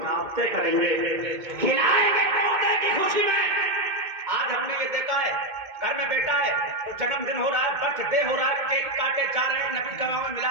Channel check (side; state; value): left; late; 2.2 ms